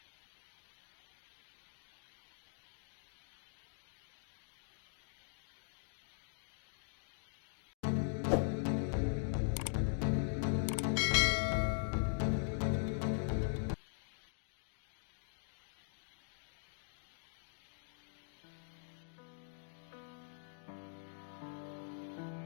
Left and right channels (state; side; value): silent; right; digital silence